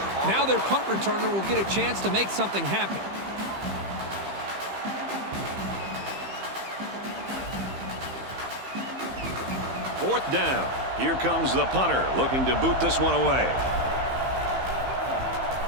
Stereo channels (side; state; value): left; late; 15 ms